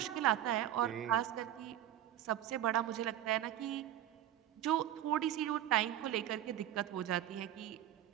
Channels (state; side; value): quieter; left; 12.0 dB